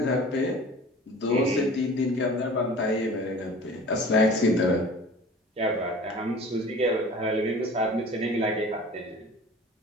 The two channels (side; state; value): both; normal; correlation 0.42